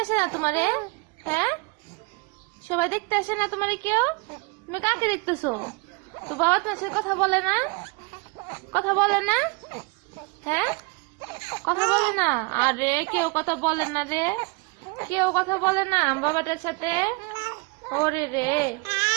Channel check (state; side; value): quieter; left; 29.1 dB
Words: আসে না তোমারে? হ্যাঁ, সবাই দেখতে আসে না তোমারে কেউ? তুমি কাকে দেখতেছো? তো বাবা তোমার সাথে কথা বলে না? কথা বলে না? হ্যাঁ, কথা বলে না? আরে কেউ কথা বলে না রে, কেউ কথা বলে না বাবাদের সাথে। ওরে রে,